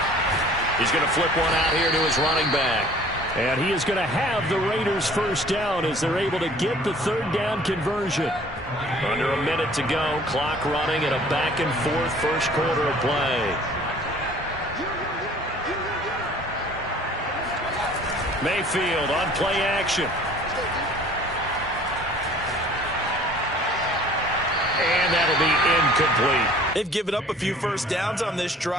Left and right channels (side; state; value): both; normal; correlation 0.51